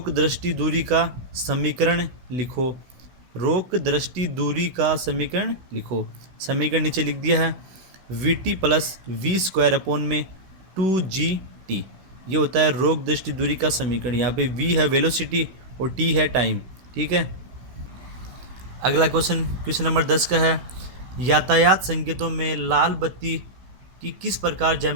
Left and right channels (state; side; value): late; left; 16 ms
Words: दृष्टि दूरी का समीकरण लिखो। रोक दृष्टि दूरी का समीकरण लिखो। समीकरण नीचे लिख दिया है, VT प्लस V² 2GT। ये होता है रोक दृष्टि दूरी का समीकरण। यहाँ पे V है वेलोसिटी और T है टाइम। ठीक है। अगला क्वेश्चन नंबर 10 का है, यातायात संकेतों में लाल बत्ती की किस प्रकार